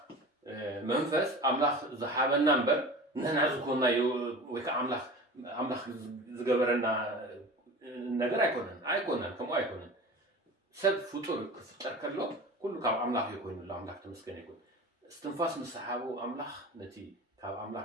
መንፈስ ኣምላኽ ዝሃበና እምበር ንሕና ዝኮንና ወይ ከዓ ኣምላኽ ዝገበረና ነገር ኣይኮነን ከምኡ ኣይኮነን ሰብ ፍጡር ክፍጠር ከሎ ኩሉ ካብ ኣምላኽ እዩ ኮይኑሎ ኣምላኽ ተመስገነ ይኩን እስትንፋስ ምስ ሰሓቡ ኣምላኽ ነቲ ካብ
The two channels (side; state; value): both; normal; correlation 0.35